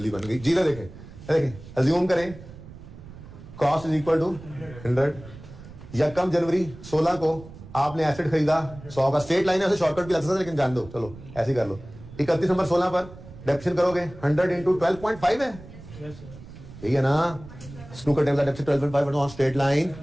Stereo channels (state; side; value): noise; right; rumble, 17 dB below the sound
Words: बन गई। जी देखें देखें अज्यूम करें कॉस्ट इज इक्वल टू 100। यकम जनवरी 16 को आपने एसेट खरीदा 100 का, स्ट्रेट लाइन है, ऐसे शॉर्टकट भी लग सकता है लेकिन जान दो, चलो ऐसे ही कर लो। 31 दिसंबर 16 पर डेप्शन करोगे 100 इंटू 12.5 है, Yes, sir. यही है ना। स्नूकर टेबल का depreciation 12.5 on straight line